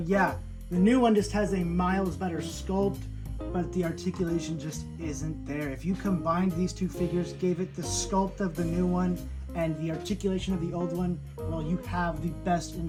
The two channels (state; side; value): identical; both; correlation 1.00